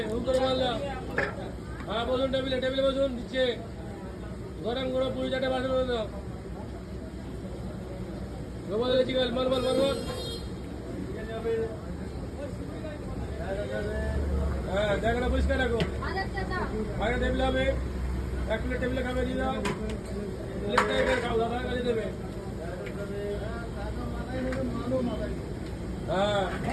উপরে মারলাম, হ্যাঁ বসুন টেবিলে, টেবিলে বসুন, দিচ্ছে। গরম গরম পুরি 4টে পার্সেল করে দাও। গোপাল চিকেন মাল মাল মাল মাল। হ্যাঁ জায়গাটা পরিষ্কার রাখো। আগে টেবিলে হবে, 1 প্লেট টেবিলে খাবে দিয়ে দাও। প্লেটটা এখানে খাও, দাদা কাজে দেবে। হ্যাঁ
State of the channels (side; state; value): both; identical; correlation 1.00